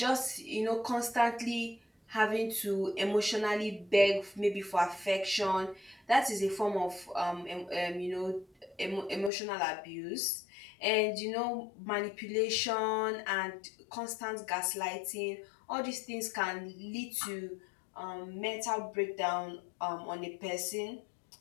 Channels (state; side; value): drops out; right; at 9.3 s